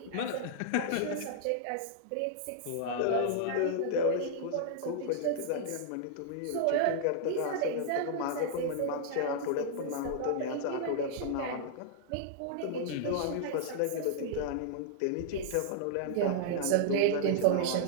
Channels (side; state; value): both; different; correlation -0.01